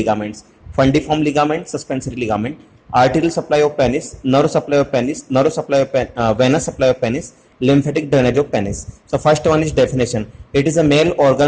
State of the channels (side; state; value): both; identical; correlation 1.00